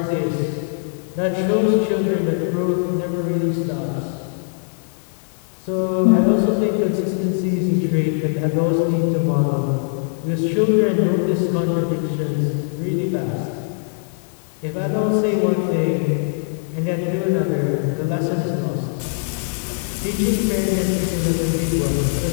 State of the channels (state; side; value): silent; right; 65 dB below the other